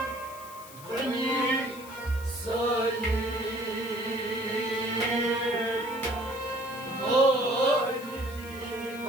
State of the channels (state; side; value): noise; left; hiss, 18 dB below the sound